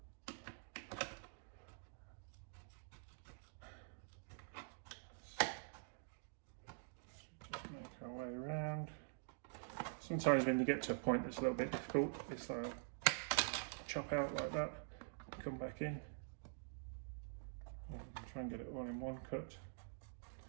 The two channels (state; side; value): silent; left; digital silence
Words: Just make our way around. Sometimes when you get to a point that's a little bit difficult, it's like chop out like that, come back in, and try and get it all in one cut.